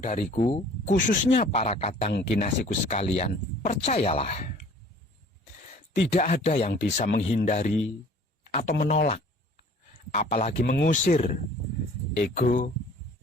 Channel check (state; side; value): normal; both; correlation 0.50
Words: khususnya para kadang kinasiku sekalian, percayalah, tidak ada yang bisa menghindari atau menolak, apalagi mengusir ego